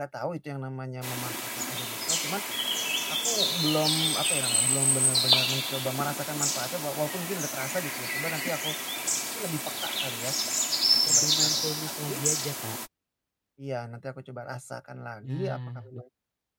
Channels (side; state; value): both; identical; correlation 1.00